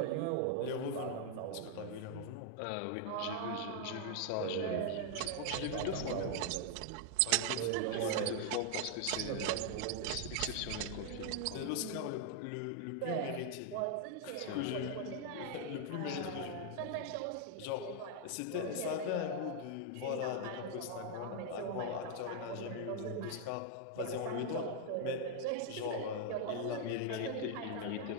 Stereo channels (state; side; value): different; both; correlation 0.00